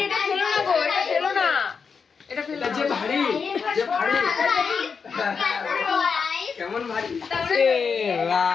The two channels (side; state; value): right; quieter; 5.7 dB